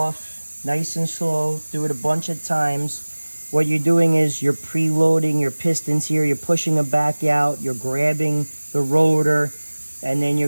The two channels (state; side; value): inverted; both; correlation -1.00